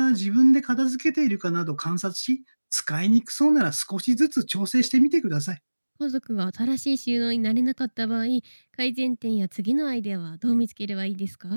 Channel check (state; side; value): inverted; both; correlation -1.00